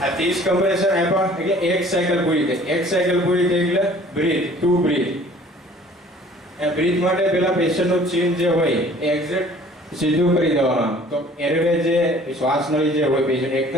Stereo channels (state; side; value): normal; both; correlation 0.52